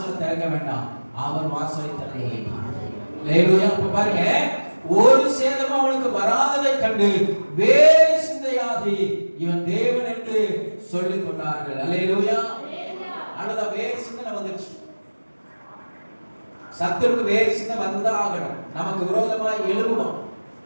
திறக்க வேண்டாம், அவர் வாசலை திறக்க வேண்டும். அப்ப பாருங்க, ஒரு சேதமும் அவனுக்கு வராததை கண்டு வேறு சிந்தையாகி இவன் தேவன் என்று சொல்லிக் கொண்டார்கள். அல்லேலூயா. அழுத வேறு சிந்தனை வந்துருச்சு. சத்துருக்கு வேறு சின்ன வந்துதான் ஆகணும். நமக்கு விரோதமாய் எழுவுவான்.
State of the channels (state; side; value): inverted; both; correlation -1.00